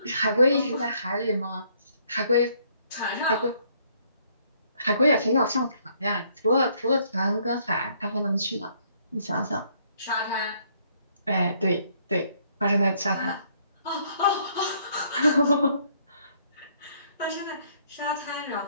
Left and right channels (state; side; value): inverted; both; correlation -0.67